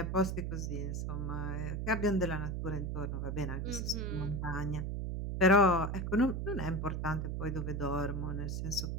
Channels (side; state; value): right; noise; hum, 2 dB below the sound